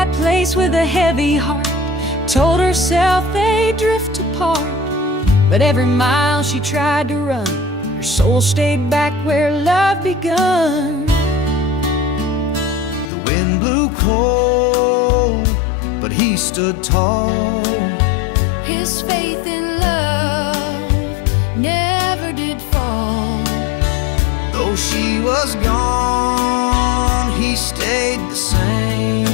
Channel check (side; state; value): right; drops out; at 13.1 s